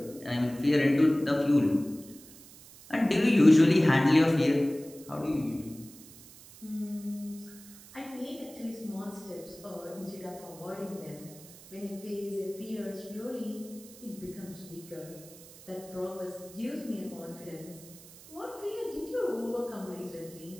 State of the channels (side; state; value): right; noise; hiss, 20 dB below the sound